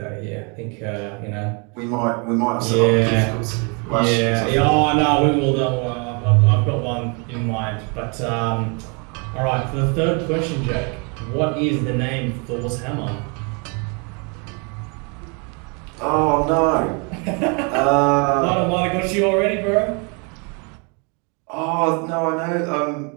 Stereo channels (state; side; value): quieter; left; 34.2 dB